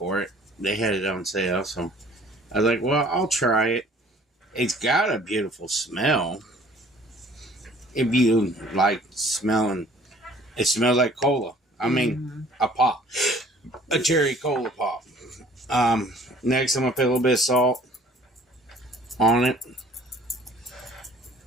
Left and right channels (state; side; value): normal; both; correlation 0.53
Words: it. They had it on sale, so I was like, well, I'll try it. It's got a beautiful smell. If you like smelling, it smells like cola. I mean, a pop. A cherry cola pop. Next, I'm going to put a little bit of salt on it.